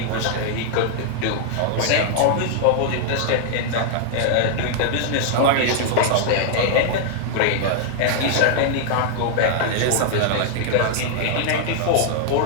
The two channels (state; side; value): different; both; correlation 0.00